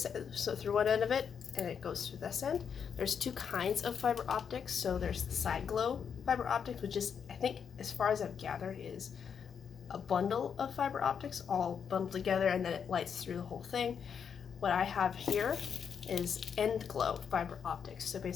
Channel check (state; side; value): quieter; right; 7.1 dB